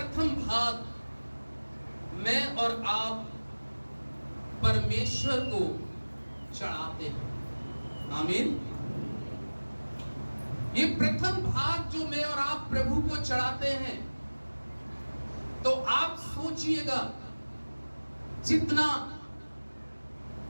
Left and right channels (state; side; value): inverted; both; correlation -1.00